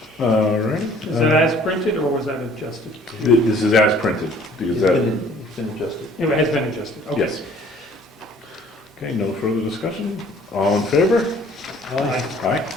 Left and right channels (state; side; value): normal; both; correlation 0.55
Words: All right. Is that as printed or was that adjusted? This is as printed, because that, It's been adjusted. It has been adjusted, okay. yes. Okay, no further discussion? All in favor? Aye. Aye.